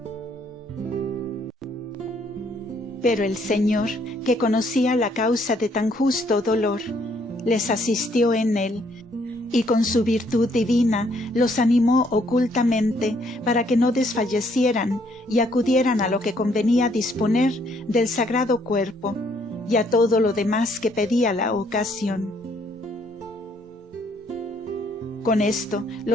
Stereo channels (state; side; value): normal; both; correlation 0.67